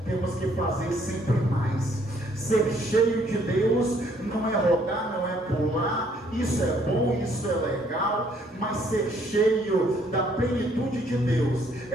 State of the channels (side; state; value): both; normal; correlation 0.65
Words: temos que fazer sempre mais. Ser cheio de Deus não é rodar, não é pular isso é bom, isso é legal, mas ser cheio da plenitude de Deus